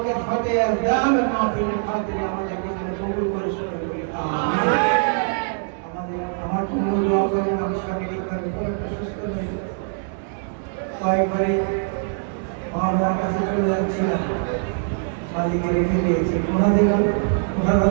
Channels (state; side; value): silent; left; digital silence